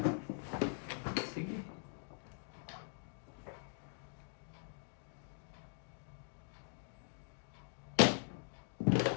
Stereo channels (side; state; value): right; silent; digital silence